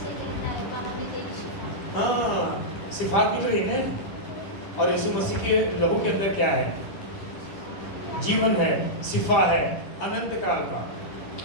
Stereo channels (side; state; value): right; late; 10 ms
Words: हाँ, सिफात निकल रही है। और यीशु मसीह के लहू के अंदर क्या है? जीवन है, सिफा है, अनंत काल का।